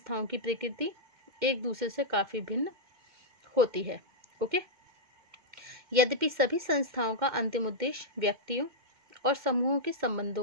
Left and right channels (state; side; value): late; left; 2.1 ms